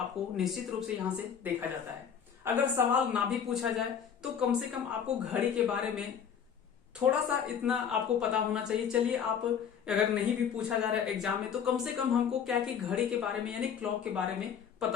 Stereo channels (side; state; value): right; quieter; 7.7 dB